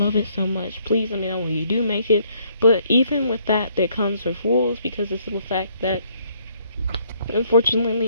it so much. Please let me know when you do make it. But even with that, there comes with rules, because the simple fact that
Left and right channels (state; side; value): inverted; both; correlation -0.67